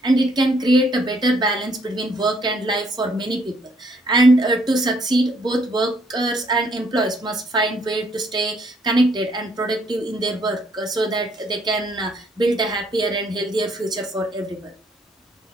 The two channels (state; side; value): normal; both; correlation 0.67